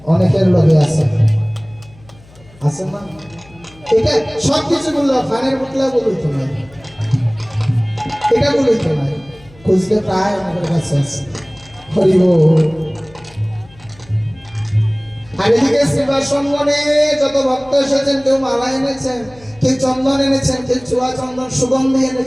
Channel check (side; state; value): left; noise; hum, 25 dB below the sound